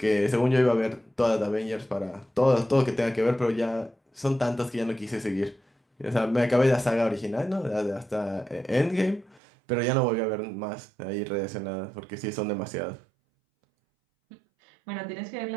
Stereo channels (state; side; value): drops out; left; at 9.4 s